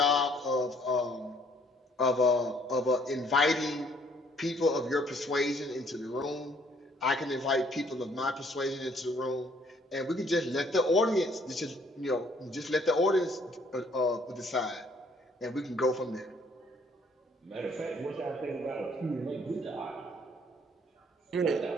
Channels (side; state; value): both; normal; correlation 0.63